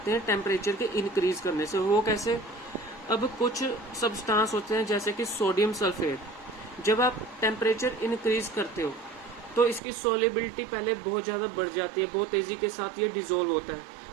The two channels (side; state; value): left; drops out; at 9.8 s